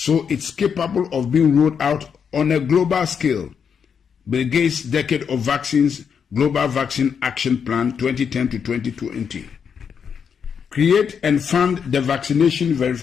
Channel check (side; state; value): right; quieter; 6.9 dB